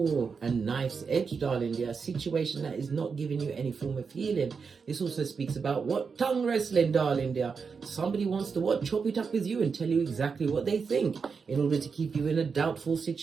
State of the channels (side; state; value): left; quieter; 5.5 dB